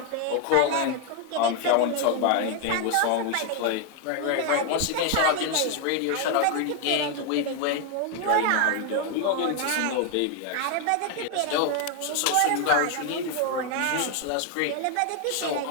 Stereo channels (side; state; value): both; different; correlation 0.01